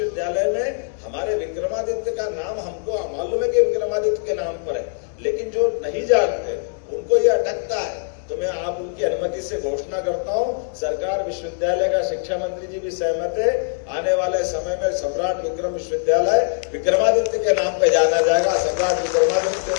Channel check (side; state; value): right; silent; digital silence